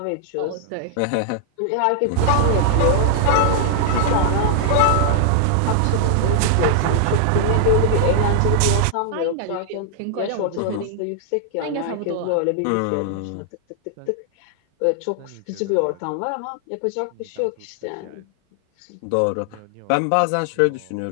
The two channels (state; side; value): different; both; correlation 0.00